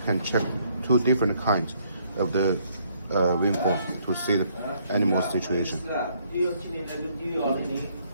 can check two different kinds of the waveform to see the animal situation.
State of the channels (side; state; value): both; inverted; correlation -0.68